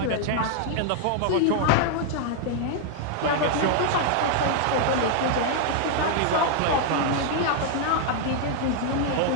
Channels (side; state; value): both; different; correlation 0.00